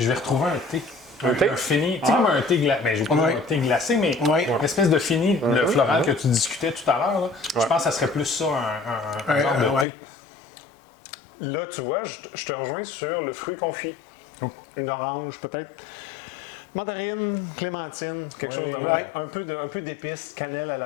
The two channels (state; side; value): drops out; right; at 9.9 s